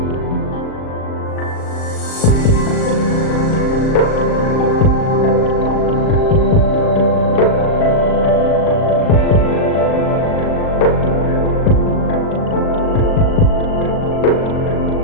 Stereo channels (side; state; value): right; late; 38 ms